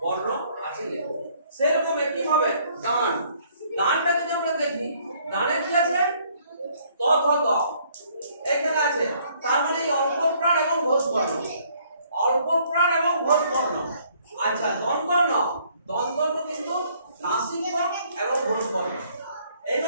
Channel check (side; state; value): both; inverted; correlation -0.63